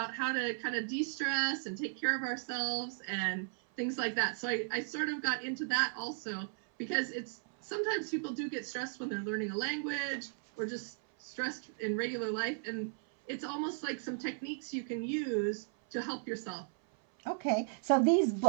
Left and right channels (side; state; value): left; silent; 54 dB below the other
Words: how to kind of de-stress and take care of ourselves and things like that. So I sort of got into that also because it's sometimes people do get stressed when they're learning a language or just stressed in regular life. And it's almost like some techniques you can use to help yourself. Okay. So these